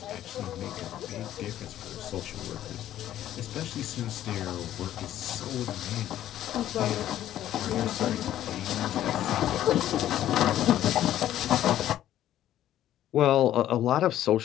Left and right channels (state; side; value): quieter; right; 12.3 dB